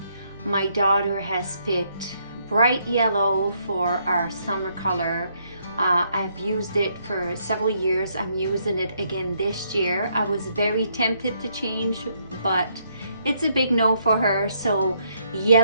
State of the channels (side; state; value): both; inverted; correlation -0.73